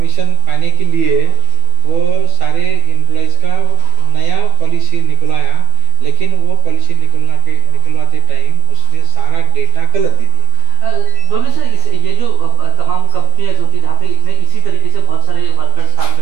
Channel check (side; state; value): left; late; 12 ms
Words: पाने के लिए वो सारे एम्प्लॉयज का नया पॉलिसी निकलवाया। लेकिन वो पॉलिसी निकलवाते टाइम उसने सारा डेटा गलत दे दिया। दोनों सर ये जो तमाम कंपनियां होती है जहाँ पे इसी तरीके से बहुत सारे वर्कर्स काम